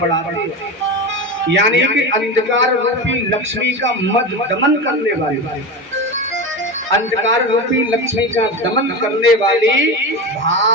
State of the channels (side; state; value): both; normal; correlation 0.23